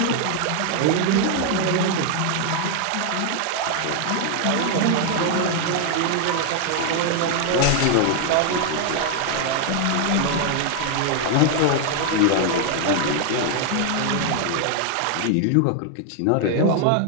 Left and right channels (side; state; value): both; different; correlation 0.00